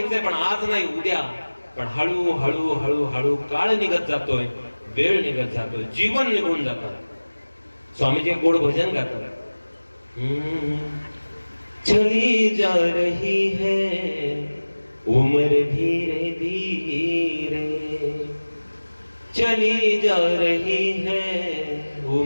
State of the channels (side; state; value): both; inverted; correlation -1.00